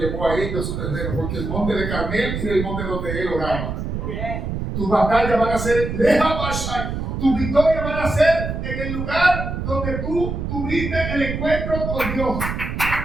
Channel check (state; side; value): noise; right; rumble, 4 dB below the sound